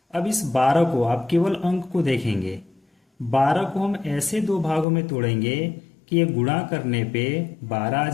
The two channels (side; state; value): right; drops out; at 4.9 s